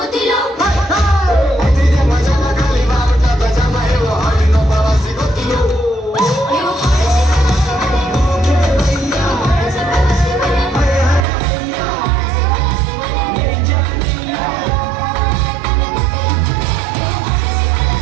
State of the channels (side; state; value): left; drops out; at 11.2 s